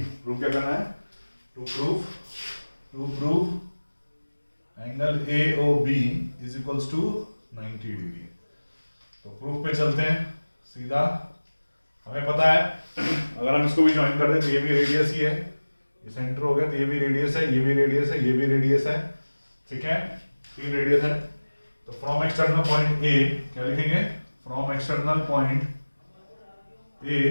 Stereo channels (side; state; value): both; inverted; correlation -1.00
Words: प्रूव क्या करना है? To prove angle AOB is equals to 90 degree. तो प्रूफ पे चलते हैं सीधा। हमें पता है अगर हम इसको भी ज्वाइन कर दें तो ये भी रेडियस ही है, ये सेंटर हो गया, तो ये भी रेडियस है, ये भी रेडियस है, ये भी रेडियस है, ठीक है, 3 रेडियस है। तो फ्रॉम एक्सटर्नल पॉइंट ए क्या लिखेंगे? फ्रॉम एक्सटर्नल पॉइंट